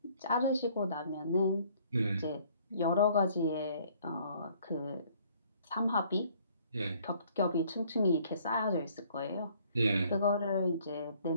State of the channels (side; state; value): both; inverted; correlation -0.60